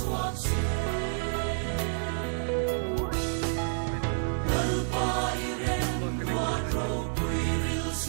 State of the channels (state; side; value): silent; left; digital silence